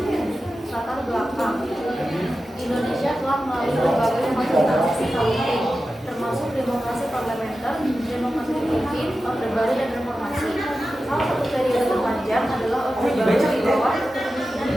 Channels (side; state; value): both; normal; correlation 0.93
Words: Latar belakang. Indonesia telah melalui berbagai macam transisi politik, termasuk demokrasi parlementer, demokrasi pimpin, orde baru, dan reformasi. Salah satu periode terpanjang adalah orde baru di bawah kepemimpinan